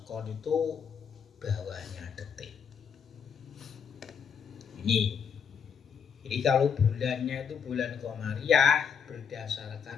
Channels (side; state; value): right; quieter; 7.1 dB